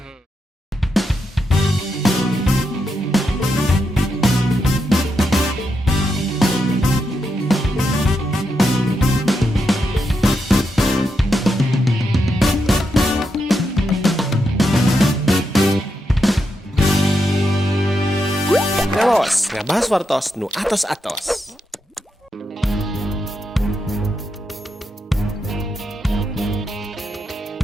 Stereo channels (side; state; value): both; normal; correlation 0.84